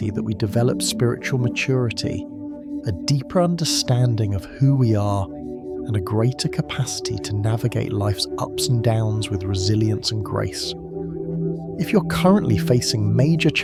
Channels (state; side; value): identical; both; correlation 1.00